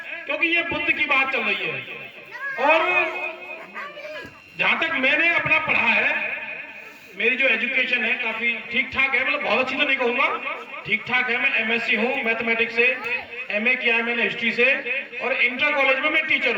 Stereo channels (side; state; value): both; identical; correlation 1.00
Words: क्योंकि ये बुद्ध की बात चल रही है। और जहां तक मैंने अपना पढ़ा है, मेरी जो एजुकेशन है काफी ठीक ठाक है, मतलब बहुत अच्छी तो नहीं कहूंगा, ठीक ठाक है। मैं एमएससी हूँ मैथमेटिक्स से, एमए किया है मैंने हिस्ट्री से, और इंटर कॉलेज में मैं टीचर